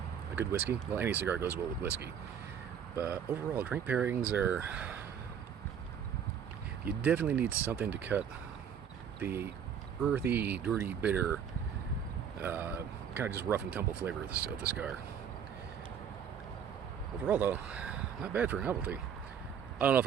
a good whiskey. Well, any cigar goes well with whiskey. But overall, drink pairings are... You definitely need something to cut the earthy, dirty, bitter, kind of just rough and tumble flavor of the cigar. Overall, though, not bad for a novelty. I don't know if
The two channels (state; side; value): quieter; left; 8.0 dB